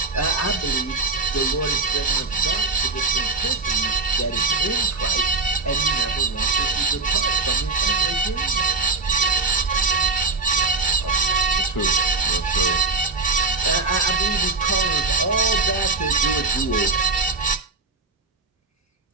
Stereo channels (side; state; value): left; quieter; 3.9 dB